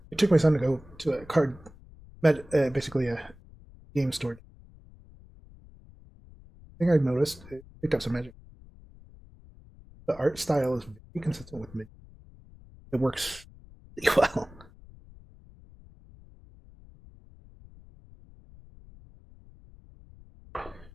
I took my son to go to a basically a game store. The thing I've noticed, it picked up some magic. The art style is very consistent with me. It works really well.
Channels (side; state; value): left; noise; rumble, 22 dB below the sound